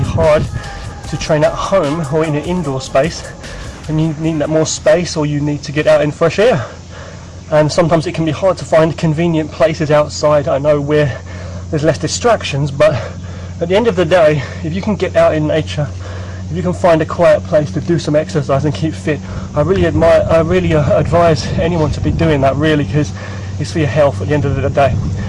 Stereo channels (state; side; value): identical; both; correlation 1.00